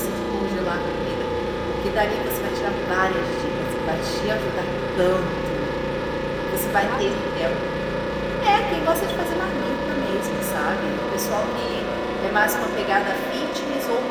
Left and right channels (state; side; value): identical; both; correlation 1.00